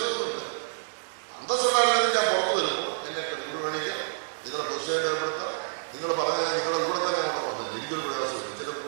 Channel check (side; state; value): left; silent; digital silence